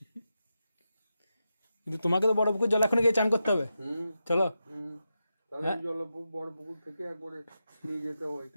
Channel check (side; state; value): both; inverted; correlation -0.88